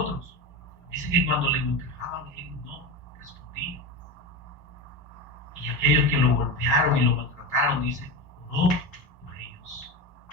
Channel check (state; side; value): normal; both; correlation 0.22